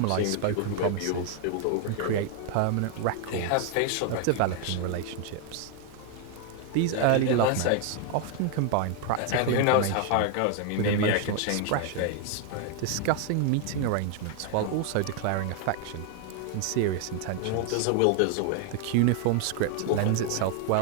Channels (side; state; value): both; different; correlation 0.01